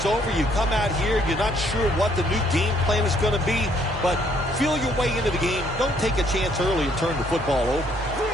over. You come out here, you're not sure what the new game plan is going to be, but feel your way into the game. Don't take a chance early and turn the football over.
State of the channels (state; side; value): normal; both; correlation 0.66